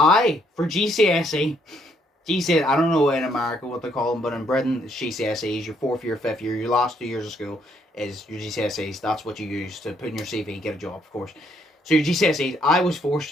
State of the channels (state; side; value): normal; both; correlation 0.70